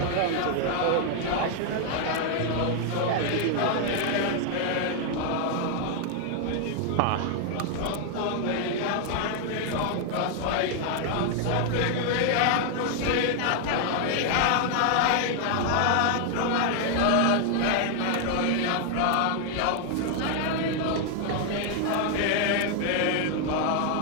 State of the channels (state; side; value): different; both; correlation 0.00